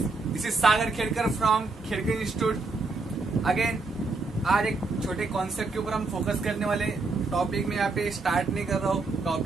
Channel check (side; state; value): left; quieter; 3.8 dB